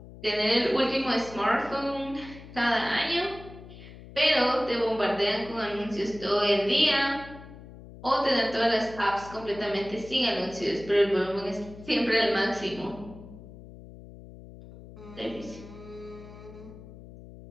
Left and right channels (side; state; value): left; noise; hum, 17 dB below the sound